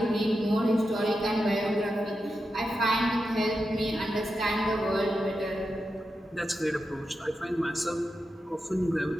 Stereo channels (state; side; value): normal; both; correlation 0.89